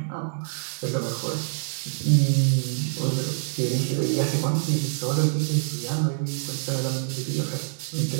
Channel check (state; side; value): silent; left; digital silence